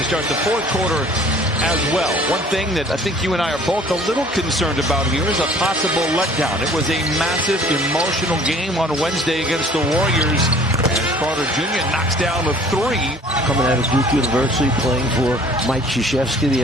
start the fourth quarter as well. One thing that I think you and I are both a little concerned about here is a possible letdown. It was a massive emotional game on Wednesday against the Warriors. As Carter Jr. knocks down a three. Coming out of Duke University, playing for Mike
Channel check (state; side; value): normal; both; correlation 0.52